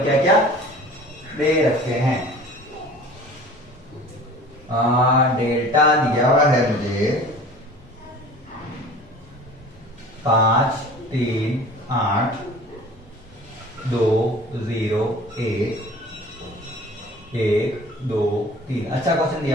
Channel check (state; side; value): normal; both; correlation 0.44